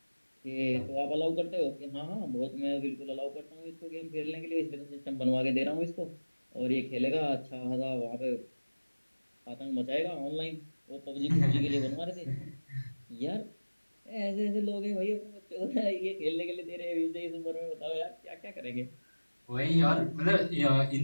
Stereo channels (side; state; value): both; inverted; correlation -1.00